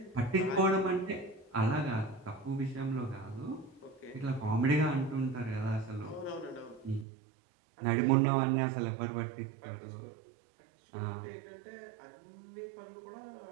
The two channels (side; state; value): left; drops out; at 7.1 s